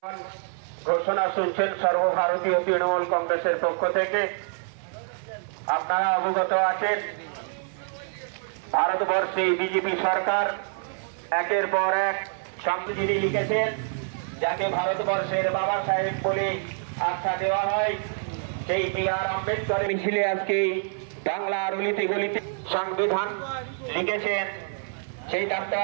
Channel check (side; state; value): left; silent; 58 dB below the other